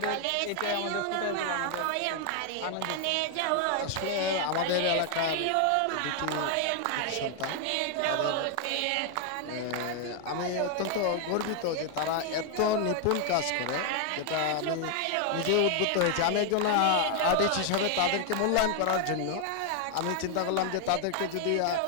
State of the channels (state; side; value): different; both; correlation 0.00